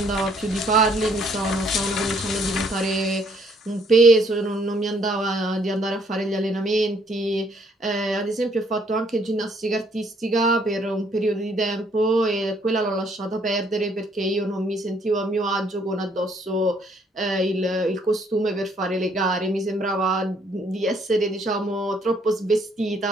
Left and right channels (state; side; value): normal; both; correlation 0.66